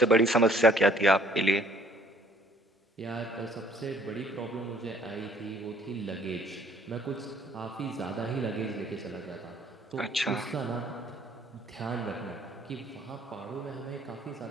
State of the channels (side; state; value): both; normal; correlation 0.58